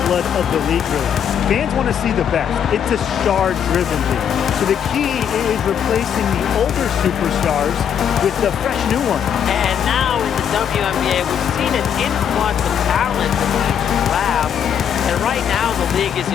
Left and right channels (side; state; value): right; quieter; 8.4 dB